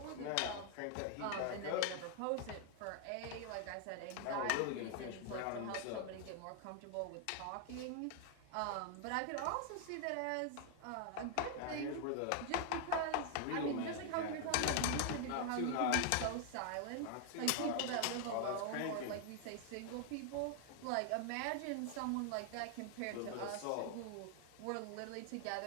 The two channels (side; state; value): both; different; correlation 0.00